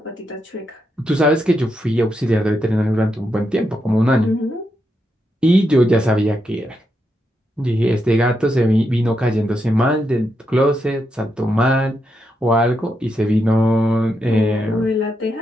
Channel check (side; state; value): both; normal; correlation 0.83